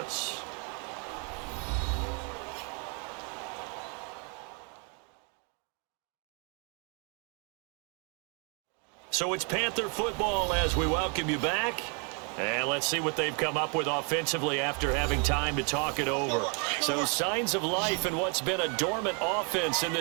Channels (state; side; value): quieter; left; 36.8 dB